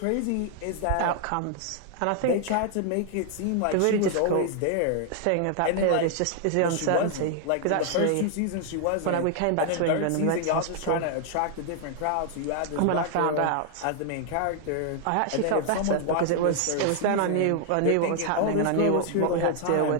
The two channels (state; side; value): different; both; correlation 0.00